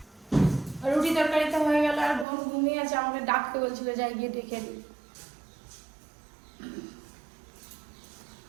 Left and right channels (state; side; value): drops out; left; at 2.2 s